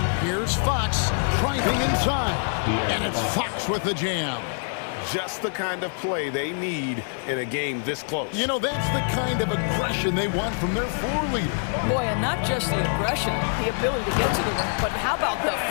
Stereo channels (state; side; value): silent; right; 62 dB below the other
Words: Here's Fox driving inside, and it's Fox with the jam. Just the kind of play they need in a game this close. You know, that's the kind of aggression they want from their floor leader. Boy, and not just the aggression, the ability to get to the rim, but how about the